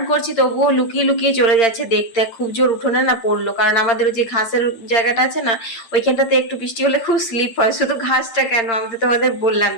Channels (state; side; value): late; right; 8.8 ms